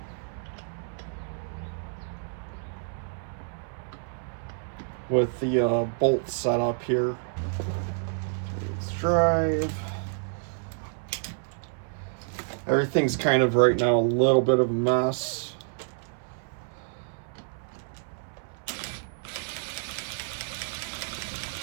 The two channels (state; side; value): silent; left; 59 dB below the other